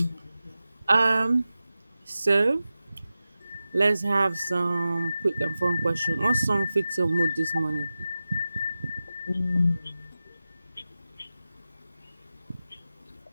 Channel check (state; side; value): inverted; both; correlation -0.94